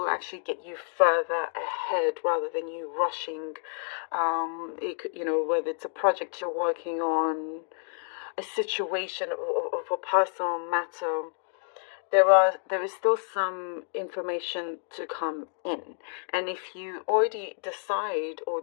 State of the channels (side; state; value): right; silent; 59 dB below the other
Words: actually get you further ahead rather than you rushing. It could, whether it's a project you're working on, a situation of a personal matter, there is still some information to come in. And if you already decide or